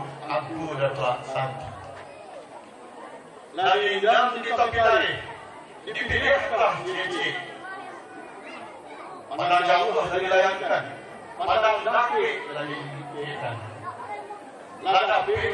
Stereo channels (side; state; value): both; identical; correlation 1.00